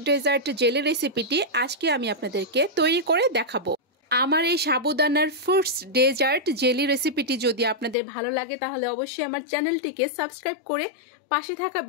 ডেজার্ট জেলি রেসিপিটি আজকে আমি আপনাদেরকে তৈরি করে দেখাবো। আমার এই সাবুদানার ফ্রুটস ডেজার্ট জেলি রেসিপিটি যদি আপনাদের ভালো লাগে তাহলে অবশ্যই আমার চ্যানেলটিকে সাবস্ক্রাইব করে পাশে থাকা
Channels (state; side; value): drops out; right; at 8.0 s